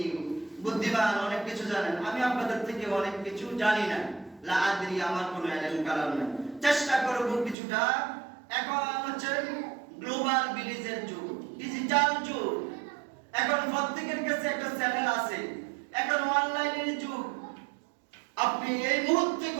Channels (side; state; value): left; drops out; at 7.6 s